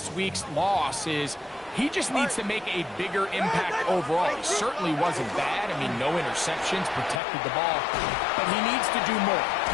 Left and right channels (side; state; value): right; drops out; at 7.2 s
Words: week's loss is he just needs to make a bigger impact overall. He certainly wasn't bad. I mean, no interceptions, protected the ball. But he needs to do more.